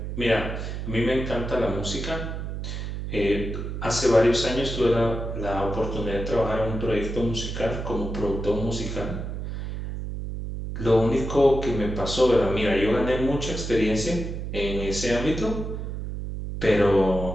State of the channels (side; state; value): right; noise; hum, 5 dB below the sound